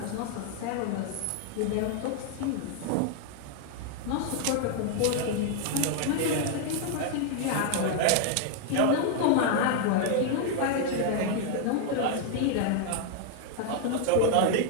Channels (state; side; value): different; both; correlation 0.00